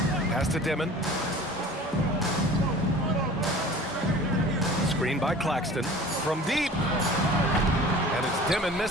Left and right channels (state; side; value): normal; both; correlation 0.43